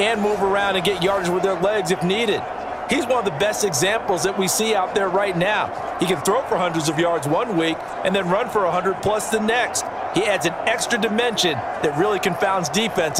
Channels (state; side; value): identical; both; correlation 1.00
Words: move around and get yardage with their legs if needed. He's one of the best examples that we see out there right now. He can throw for hundreds of yards one week and then run for 100+ the next. He adds an extra dimension that really confounds